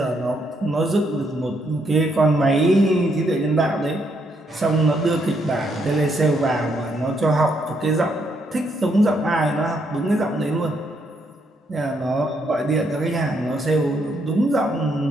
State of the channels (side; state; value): both; normal; correlation 0.75